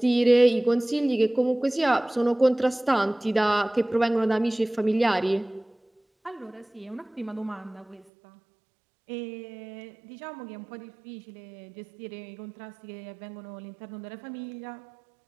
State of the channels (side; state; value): left; drops out; at 8.1 s